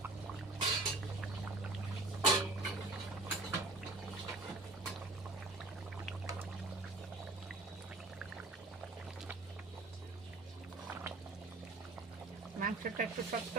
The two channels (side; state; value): left; quieter; 3.2 dB